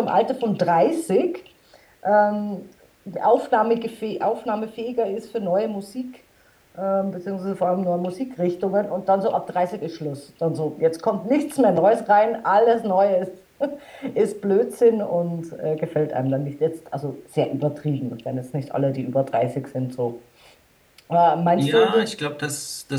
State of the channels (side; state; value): both; identical; correlation 1.00